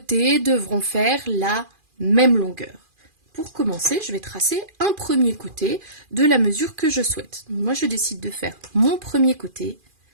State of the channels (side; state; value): left; late; 2.4 ms